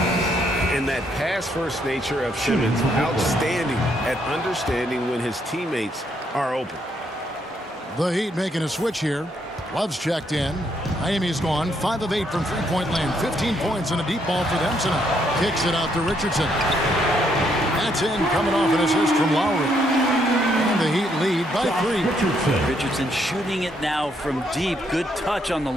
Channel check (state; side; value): normal; both; correlation 0.73